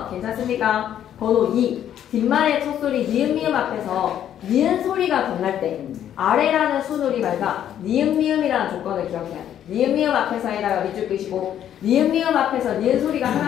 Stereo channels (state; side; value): quieter; right; 10.4 dB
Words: 괜찮습니까? 번호 2. 뒷말의 첫소리 니은 미음 앞에서 니은 소리가 덧날 때 아래라는 순우리말과 니은 미음이라는 조건을 기억해야 돼. 니은 미음 앞에서에다가 밑줄 끄시고 니은 미음 앞에서 니은 소리가